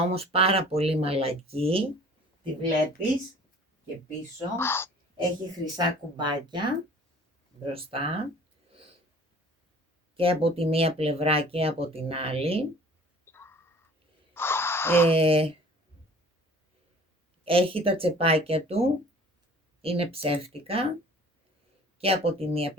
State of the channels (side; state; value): both; normal; correlation 0.49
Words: όμως πάρα πολύ μαλακή. Τη βλέπεις και πίσω. Έχει χρυσά κουμπάκια μπροστά και από τη μία πλευρά και από την άλλη. Έχει τα τσεπάκια του, είναι ψεύτικα και από τη μία